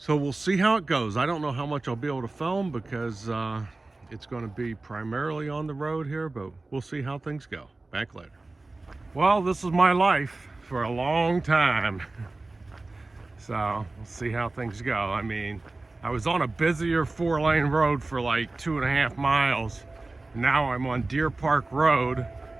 we'll see how it goes. I don't know how much I'll be able to film because it's going to be primarily on the road here, but we'll see how things go. Back later. Well, this is my life for a long time. So we'll see how things go. I mean, I was on a busier 4-lane road for like 2.5 miles. Now I'm on Deer Park Road,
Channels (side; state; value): left; quieter; 3.2 dB